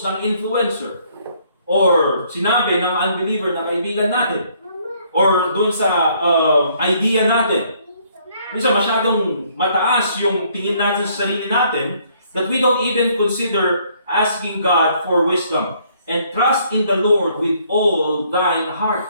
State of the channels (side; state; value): both; inverted; correlation -0.65